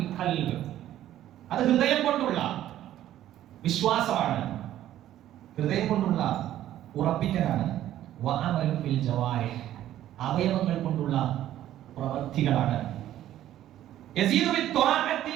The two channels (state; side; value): quieter; left; 12.6 dB